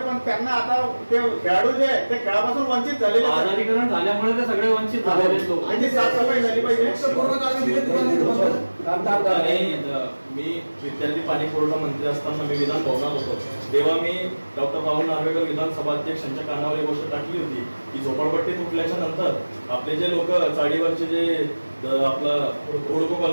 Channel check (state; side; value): inverted; both; correlation -1.00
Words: पण त्यांना आता ते खेळाडू जे आहेत ते खेळापासून वंचित झालेले. आजारीकरण झाल्यामुळे ते सगळे वंचित झालेले लोक. आणि साफसफाई झाली पाहिजे. मी विद्यार्थी पाणी पुरवठा मंत्री असताना मी विधान भवनात होतो, तेव्हा मी डॉक्टर राहुल नार्वेकर विधानसभा अध्यक्षांच्या कानावर एक गोष्ट टाकली होती की झोपडपट्टी तुटल्याच्या नंतर आपले जे लोक चाळीवरचे जे आपलं ओळखो